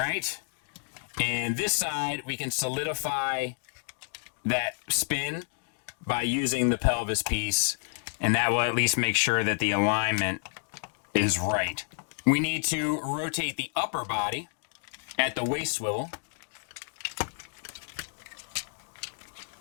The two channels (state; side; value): silent; right; digital silence